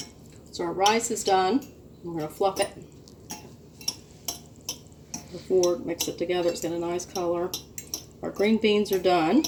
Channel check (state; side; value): identical; both; correlation 1.00